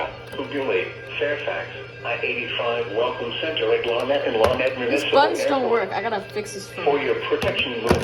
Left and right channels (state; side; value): identical; both; correlation 1.00